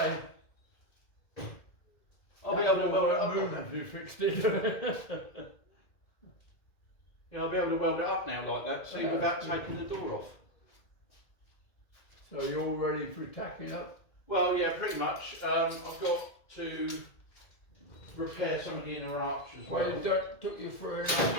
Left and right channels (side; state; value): right; late; 2.1 ms